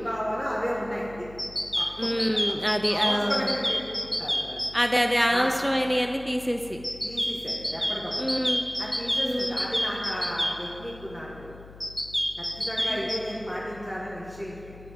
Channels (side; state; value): left; noise; hum, 18 dB below the sound